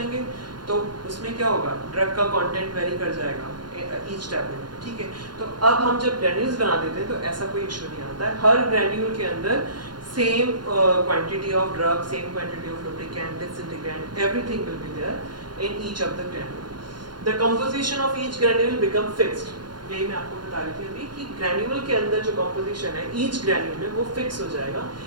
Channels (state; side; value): late; left; 0.71 ms